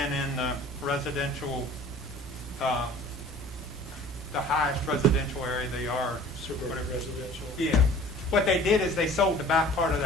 in the residential, the highest residential area they are. Suburban residential. Yeah. What they did is they sold the back part of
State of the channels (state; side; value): normal; both; correlation 0.47